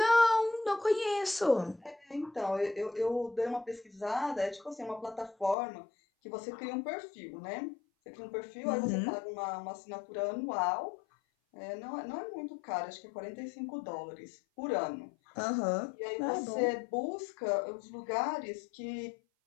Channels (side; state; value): right; drops out; at 5.6 s